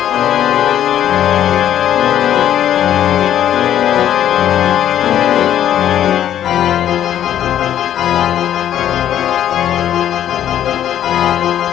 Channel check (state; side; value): quieter; right; 10.9 dB